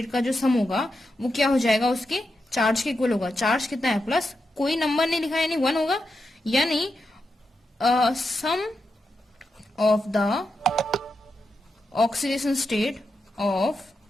का जो सम होगा वो क्या हो जाएगा, उसके चार्ज के इक्वल होगा। चार्ज कितना है प्लस, कोई नंबर नहीं लिखा यानी 1 होगा। यानी sum of the oxidation state of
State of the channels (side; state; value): both; normal; correlation 0.87